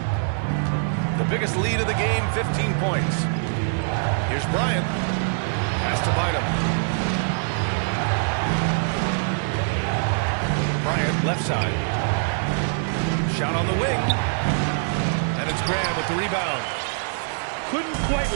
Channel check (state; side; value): silent; left; 57 dB below the other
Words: The biggest lead of the game, 15 points. Here's Bryant. Pass to Bynum. Bryant, left side. Shot on the wing. And it's Graham with the rebound. Couldn't quite